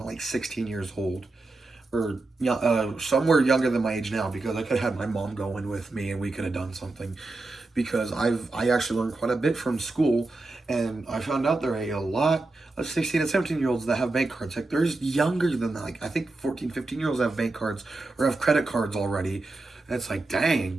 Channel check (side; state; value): left; quieter; 3.2 dB